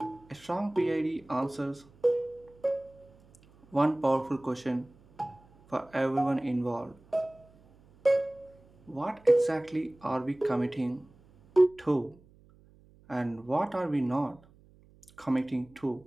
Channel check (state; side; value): noise; right; hum, 27 dB below the sound